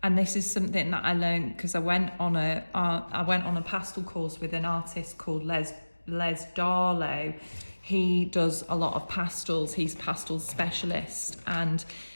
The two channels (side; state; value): both; inverted; correlation -1.00